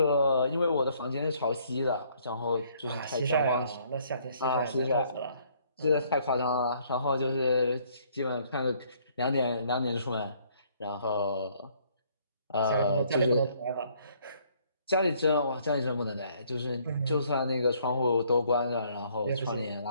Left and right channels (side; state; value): both; inverted; correlation -0.64